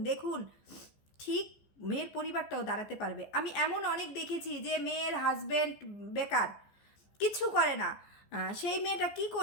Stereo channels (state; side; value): late; right; 14 ms